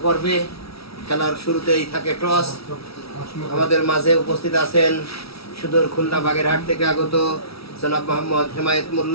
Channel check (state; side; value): late; right; 0.76 ms